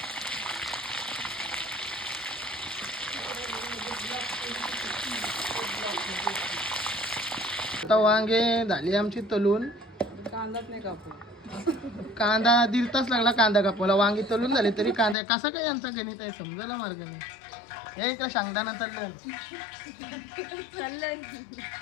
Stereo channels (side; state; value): right; drops out; at 15.2 s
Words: आता वांगे झाली आमची तलून। कांदाच नाही कापू। कांदा 1.5 तास लागला कांदा कापायला। वांगी तलून झाली तरी कांदा कसा काय यांचा गणित आहे समजायला मार्ग नाही। हे इकडे शेंगदाणा तळलं